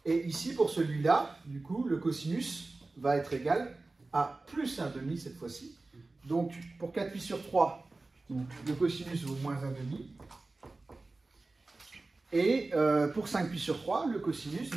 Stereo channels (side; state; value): left; quieter; 3.3 dB